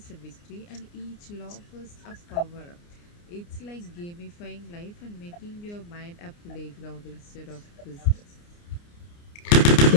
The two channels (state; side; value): late; right; 29 ms